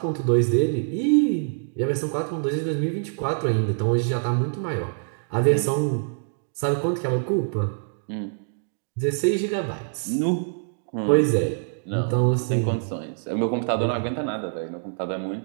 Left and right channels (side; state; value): left; silent; digital silence